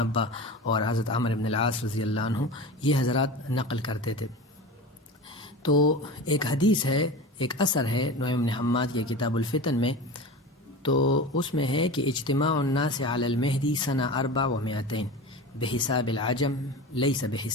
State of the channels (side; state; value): both; normal; correlation 0.30